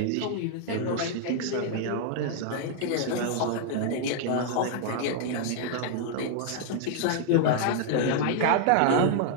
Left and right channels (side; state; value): both; different; correlation 0.00